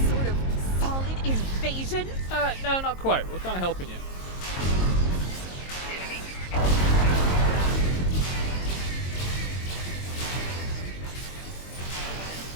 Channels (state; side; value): late; right; 22 ms